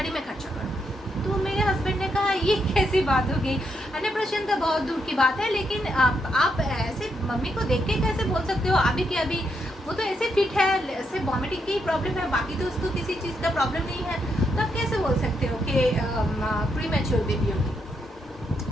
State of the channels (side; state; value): both; normal; correlation 0.79